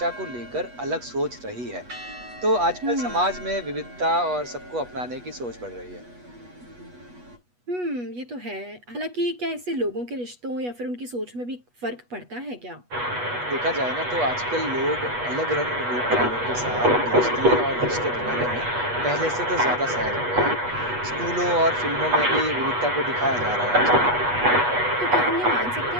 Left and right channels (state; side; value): late; left; 8.2 ms